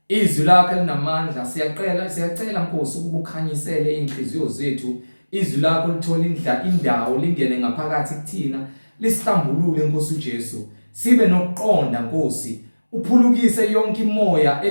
izwi lakhe linamandla, siyacela Nkosi ukuba ukhanyisele inhliziyo zethu, izwi lakho lithola indawo lingene ngaphakathi kuthina, lisihlambulule Nkosi uJesu. Sibe nokuqonda Nkosi, uphulukise yonke imoya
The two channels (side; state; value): both; inverted; correlation -1.00